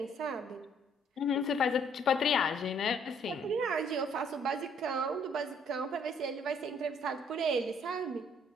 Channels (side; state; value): both; normal; correlation 0.64